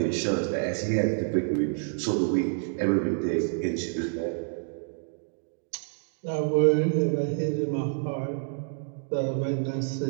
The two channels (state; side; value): silent; left; digital silence